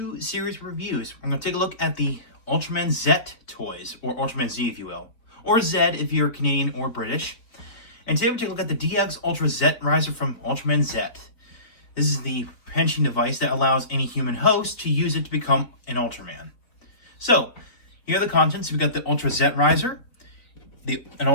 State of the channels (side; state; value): right; late; 4.2 ms